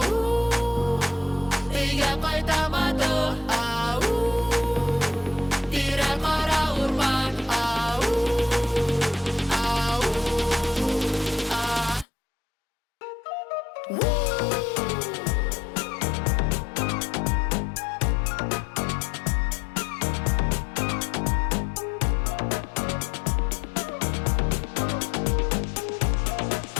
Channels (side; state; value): right; drops out; at 12.1 s